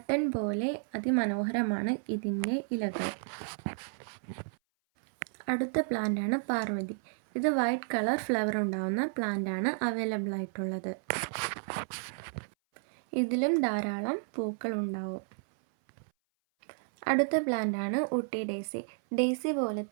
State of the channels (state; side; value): silent; left; 57 dB below the other